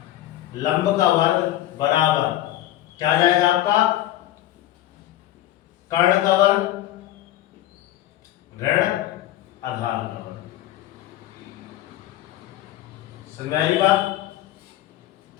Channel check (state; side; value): quieter; right; 13.9 dB